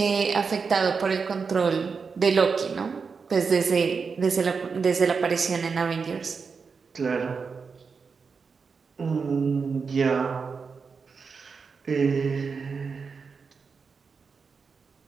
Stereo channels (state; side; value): quieter; left; 5.3 dB